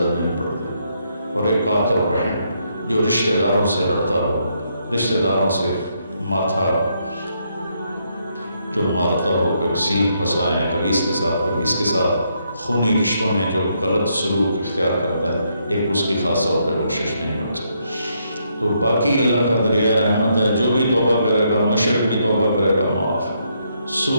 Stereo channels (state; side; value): inverted; both; correlation -0.76